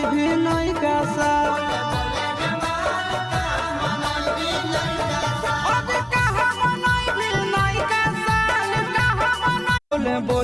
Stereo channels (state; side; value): identical; both; correlation 1.00